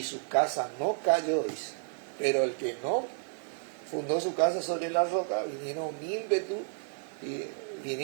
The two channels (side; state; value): left; silent; 57 dB below the other